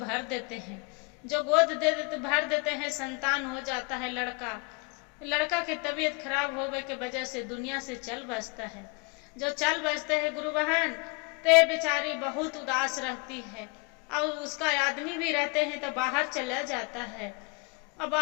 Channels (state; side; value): quieter; right; 30.3 dB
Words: देते हैं। जो गोद भर देते हैं, संतान हो जाता है लड़का। लड़का की तबीयत खराब होने के वजह से दुनिया से चल बसता है। जो चल बसते हैं गुरु बहन, ते बेचारी बहुत उदास रहती है। और उसका आदमी भी रहते हैं तो बाहर चला जाता है, और